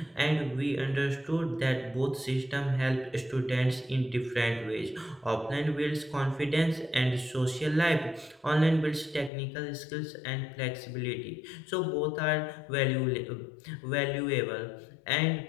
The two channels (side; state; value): right; drops out; at 9.3 s